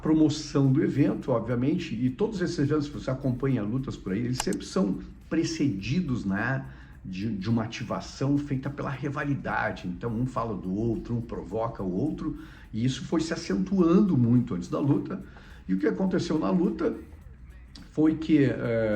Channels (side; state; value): both; identical; correlation 1.00